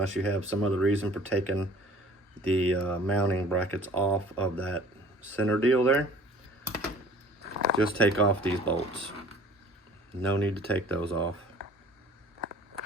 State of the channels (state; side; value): normal; both; correlation 0.50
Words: you have some other reason for taking the mounting brackets off of that center deal there. Just take off these bolts. No need to take those off.